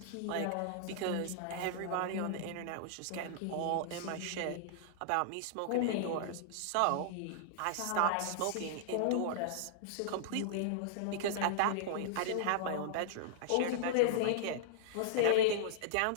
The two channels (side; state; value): both; different; correlation -0.01